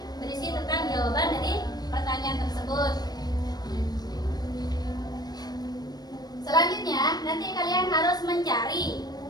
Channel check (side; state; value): right; late; 0.19 ms